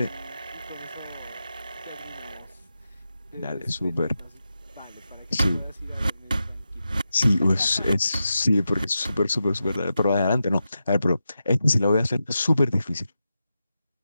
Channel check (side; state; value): both; inverted; correlation -0.89